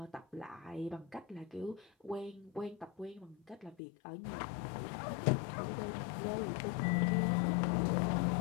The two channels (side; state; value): right; drops out; at 3.8 s